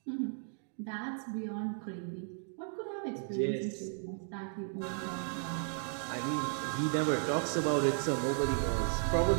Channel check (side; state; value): left; silent; digital silence